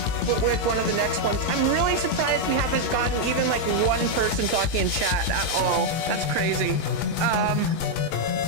with one of the next ones. I'm really surprised we haven't gotten even like one person talking in chat at all. That's crazy.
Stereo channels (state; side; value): late; right; 19 ms